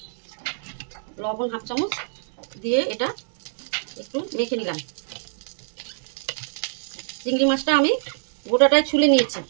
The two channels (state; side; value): silent; left; digital silence